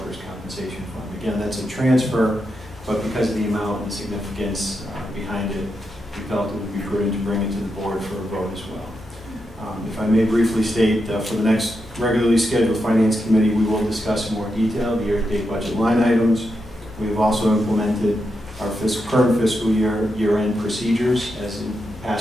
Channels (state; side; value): normal; both; correlation 0.85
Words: compensation fund. Again, that's a transfer, but because of the amount and the significance behind it, we felt it would be prudent to bring it to the board for a vote as well. If I may briefly state, for the next regularly scheduled Finance Committee, we will discuss in more detail the year-to-date budget line items. We have also implemented our current fiscal year-end procedures. As in